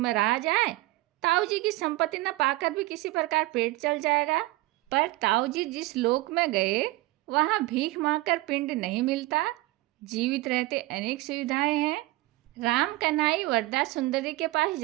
रहा जाए, ताऊजी की संपत्ति न पाकर भी किसी प्रकार पेट चल जाएगा। पर ताऊजी जिस लोक में गए वहाँ भीख मांगकर पिंड नहीं मिलता। जीवित रहते अनेक सुविधाएं हैं। राम कन्हई वरदा सुंदरी के पास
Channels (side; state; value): left; quieter; 19.3 dB